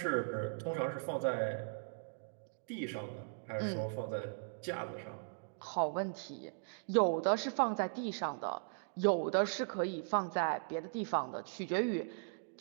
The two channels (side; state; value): left; silent; digital silence